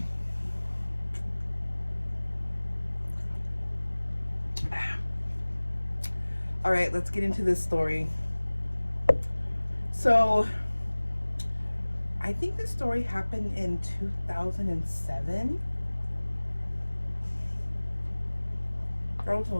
All right, let's get into this story. So I think this story happened in 2007. That was a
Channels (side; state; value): both; inverted; correlation -1.00